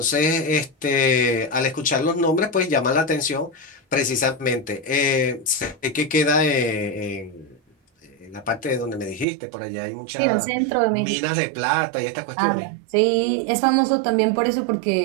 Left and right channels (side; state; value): left; drops out; at 9.2 s